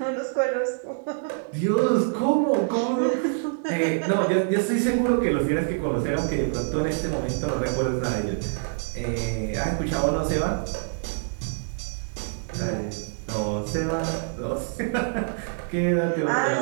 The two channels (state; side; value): silent; left; digital silence